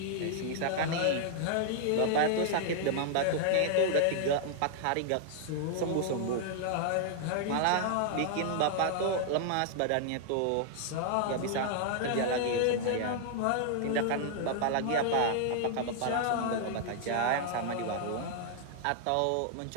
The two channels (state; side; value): different; both; correlation -0.01